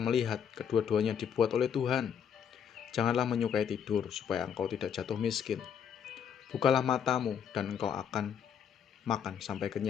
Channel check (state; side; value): quieter; right; 8.1 dB